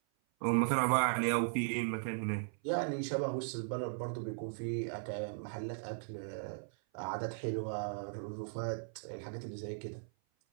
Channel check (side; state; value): left; silent; 53 dB below the other